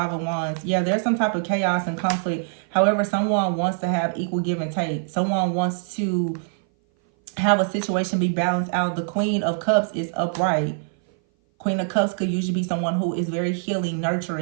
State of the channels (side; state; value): left; silent; 58 dB below the other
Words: of Wands. Yeah, there's some type of chaos and conflict. However, someone wants to have equal give and take. Someone wants to have a situation be balanced out. The Queen of Cups is upright. Queen of Cups could usually be someone who is very healing,